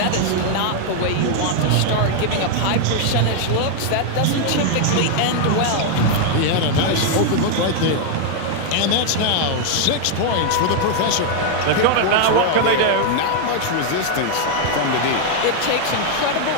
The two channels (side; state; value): both; different; correlation 0.00